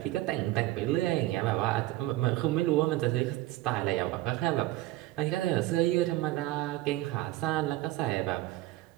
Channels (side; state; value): left; quieter; 16.7 dB